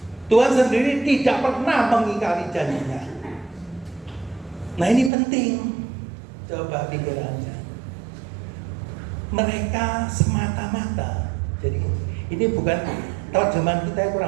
Tuhan sendiri tidak pernah mengingkari janjinya. Nah ini penting. Coba pikirannya. Mereka semata-mata. Jadi ini bukan terjemahan kita yang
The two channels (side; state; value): left; drops out; at 5.1 s